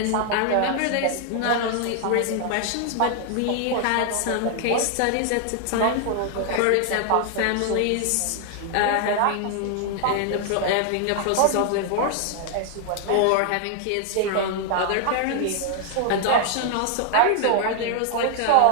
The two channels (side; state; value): both; different; correlation 0.00